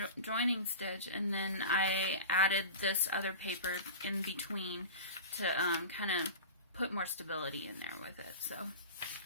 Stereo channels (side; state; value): both; inverted; correlation -0.32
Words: joining stitch, and then I added this other paper in between to kind of put more stability in there with it. So